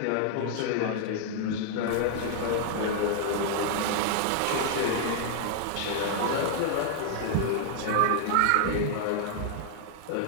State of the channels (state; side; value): different; both; correlation -0.01